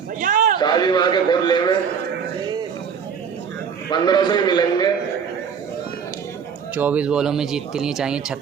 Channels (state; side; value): quieter; left; 6.8 dB